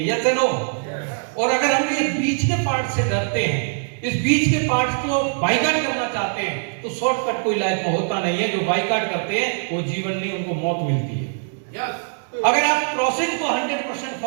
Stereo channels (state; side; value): silent; left; digital silence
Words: Yes no? और अगर हम ये बीच के पार्ट से डरते हैं, इस बीच के पार्ट को बाइकाट करना चाहते हैं, तो शॉर्टकट कोई लाइफ में होता नहीं है। जो बाइकाट करते हैं वो जीवन नहीं, उनको मौत मिलती है। अगर आप प्रोसेस को 100%